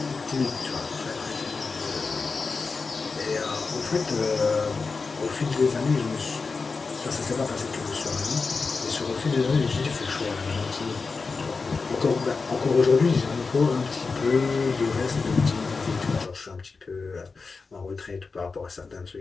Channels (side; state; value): right; quieter; 4.4 dB